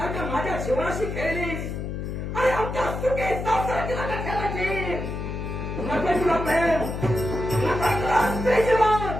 माझ्या जीवनाशी खेळलीस आणि आमच्या सुखी संसाराची जागा ठेवायची. नको तुला प्रेम, नको तुला स्त्री जीवन,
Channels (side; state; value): left; noise; hum, 5 dB below the sound